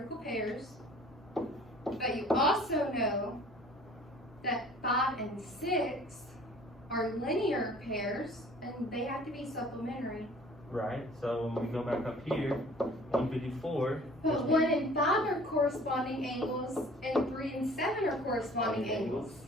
pairs. But you also know that 5 and 6 are linear pairs, and they have to be supplementary. Right, so when we go back up here, 154. But 1 and 5 are corresponding angles, and 3 and 7 are corresponding angles.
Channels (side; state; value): both; normal; correlation 0.50